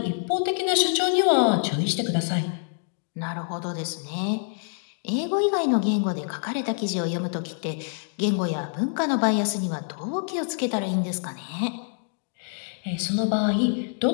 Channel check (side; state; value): right; silent; digital silence